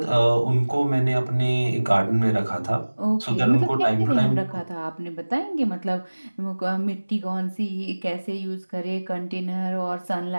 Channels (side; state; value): both; inverted; correlation -1.00